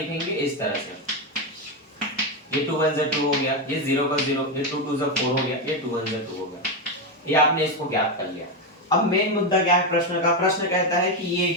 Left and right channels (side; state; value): both; normal; correlation 0.09